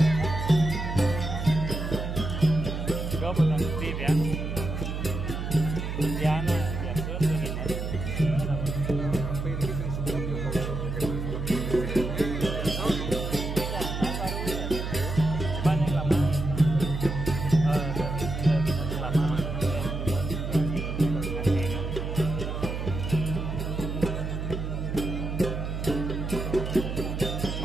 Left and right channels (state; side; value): noise; right; hum, 4 dB below the sound